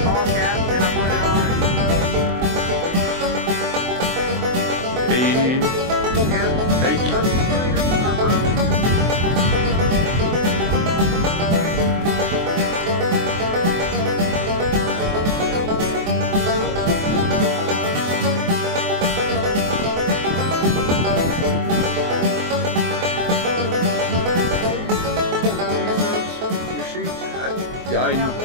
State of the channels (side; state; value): left; late; 23 ms